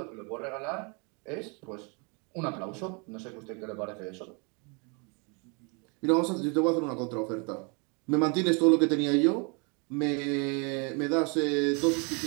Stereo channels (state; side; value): quieter; left; 33.3 dB